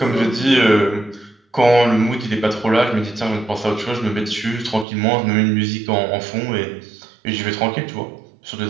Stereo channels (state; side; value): drops out; left; at 4.9 s